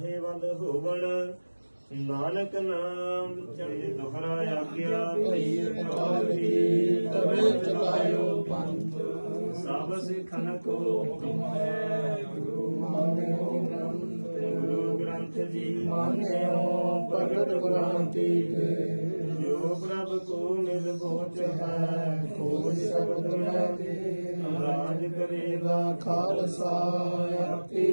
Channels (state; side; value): inverted; both; correlation -1.00